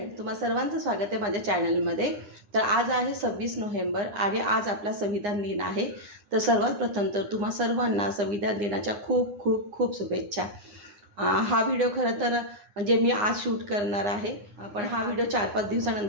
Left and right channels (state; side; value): late; left; 9.8 ms